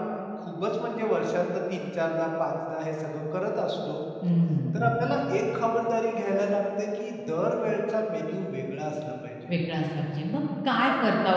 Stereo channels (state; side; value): identical; both; correlation 1.00